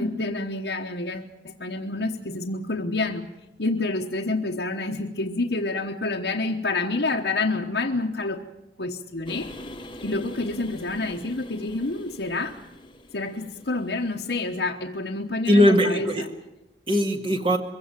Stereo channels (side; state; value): both; normal; correlation 0.53